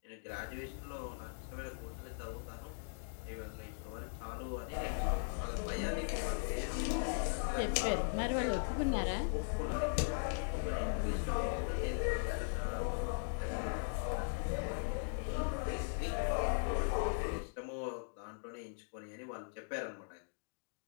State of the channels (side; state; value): right; silent; digital silence